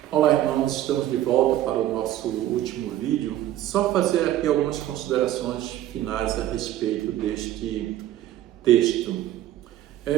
Olá, irmãos, estamos de volta para o nosso último vídeo. Só fazer aqui algumas considerações finais a respeito deste texto.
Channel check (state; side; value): quieter; left; 13.2 dB